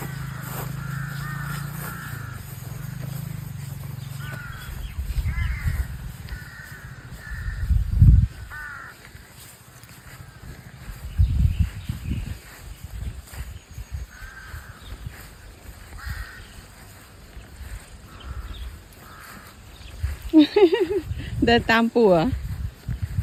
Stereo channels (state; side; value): identical; both; correlation 1.00